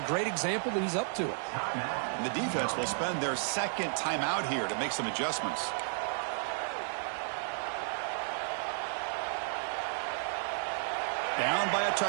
great example that he's up to it. And the defense will spend their second timeout here to make some adjustments. Down by a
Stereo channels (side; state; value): left; silent; 56 dB below the other